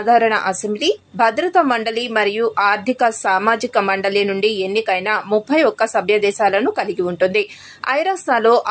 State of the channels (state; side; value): identical; both; correlation 1.00